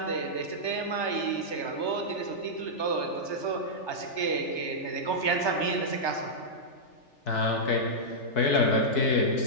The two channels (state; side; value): late; right; 3.4 ms